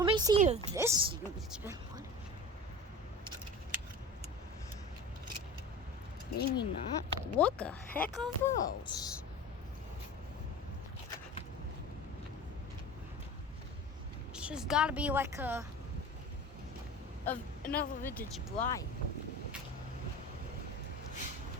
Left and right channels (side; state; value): both; normal; correlation 0.34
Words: me see if this unit's been running. Maybe not. What the heck are those? It's just gotta be like another vintage Bryant.